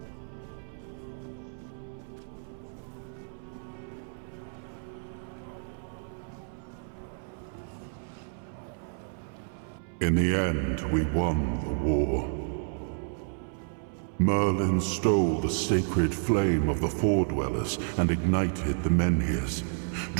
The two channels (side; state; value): left; silent; 58 dB below the other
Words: In the end, we won the war. Merlin stole the sacred flame of the Four Dwellers and ignited the Menhirs,